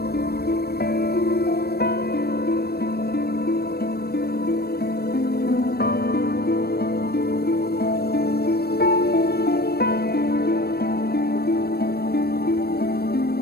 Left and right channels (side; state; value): right; late; 0.46 ms